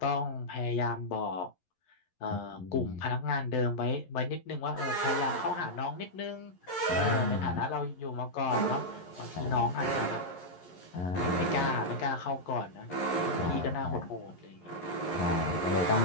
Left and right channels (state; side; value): late; right; 11 ms